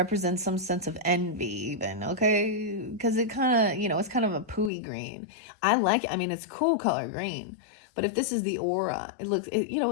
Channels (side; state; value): right; drops out; at 4.7 s